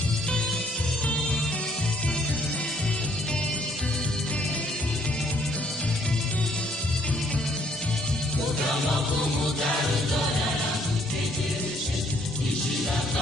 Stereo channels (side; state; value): both; normal; correlation 0.66